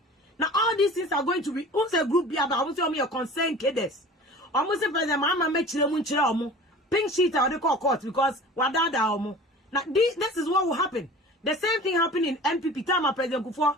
Now all these things are going to be who's a group here, but I want to your concern cadets. Almost President Mama make chile pink sheet or they call court because wadada omo. Now this is what will happen. The same thing happened in MPP time of President Kufuor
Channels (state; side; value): normal; both; correlation 0.41